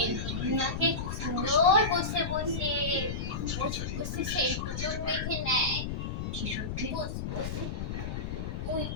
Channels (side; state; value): left; noise; rumble, 4 dB below the sound